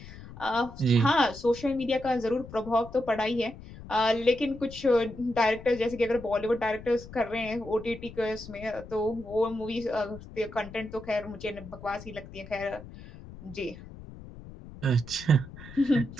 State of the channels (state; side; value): noise; left; rumble, 15 dB below the sound